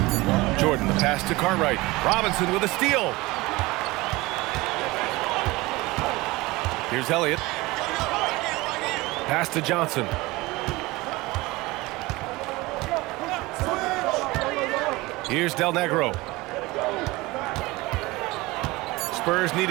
Jordan, the pass to Cartwright. Robinson with a steal. Here's Elliott. Pass to Johnson. Here's Del Negro. Spurs need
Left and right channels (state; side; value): quieter; left; 21.2 dB